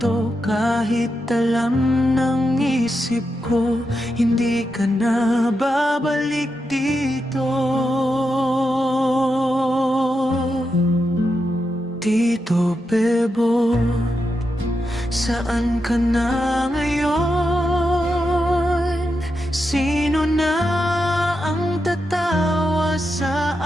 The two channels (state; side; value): normal; both; correlation 0.86